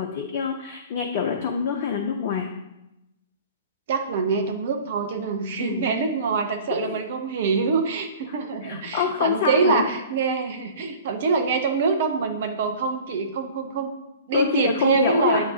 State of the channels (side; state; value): both; inverted; correlation -0.43